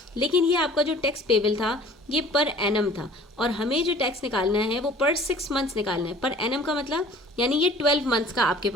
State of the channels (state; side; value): normal; both; correlation 0.48